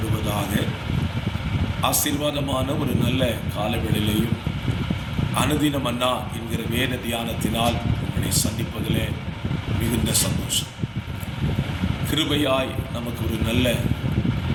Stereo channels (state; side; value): identical; both; correlation 1.00